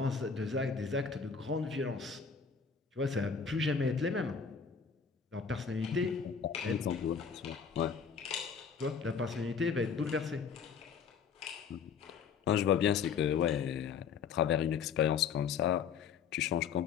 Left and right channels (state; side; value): quieter; right; 6.4 dB